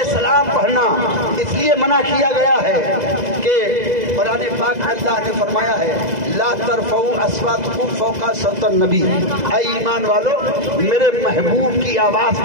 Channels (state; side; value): late; left; 2.0 ms